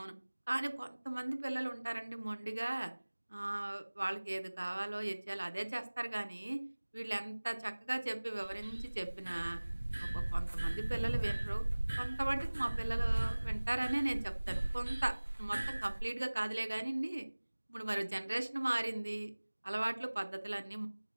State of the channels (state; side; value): inverted; both; correlation -1.00